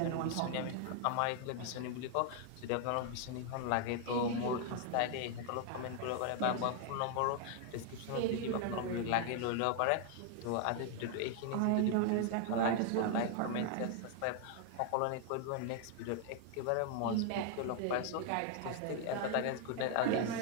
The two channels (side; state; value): both; different; correlation 0.00